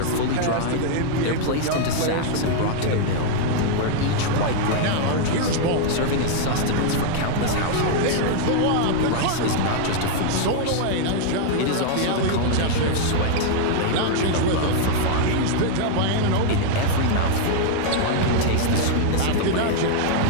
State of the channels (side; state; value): both; different; correlation 0.00